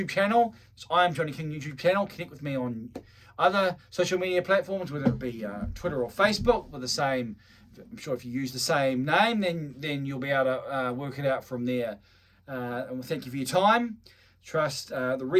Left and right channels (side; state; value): both; identical; correlation 1.00